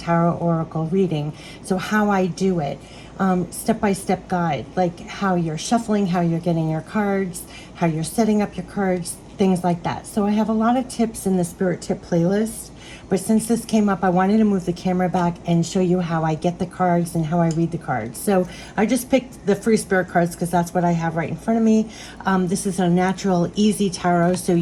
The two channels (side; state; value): both; identical; correlation 1.00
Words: oracle reading? So how I do it, step-by-step guide, like how you're shuffling, how you're getting your cards, how you're setting up your cards, things like that. So I have a lot of tips in the Spirit Tip playlist, but since this came up, I wanted to move the camera back and show you how I get the cards and how I read the cards. So I just picked the Free Spirit cards because that's what I have right in front of me. This is a natural, easy tarot, so